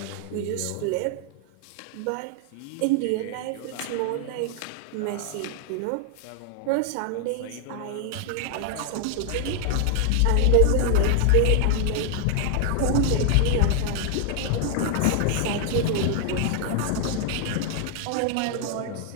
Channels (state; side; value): different; both; correlation 0.00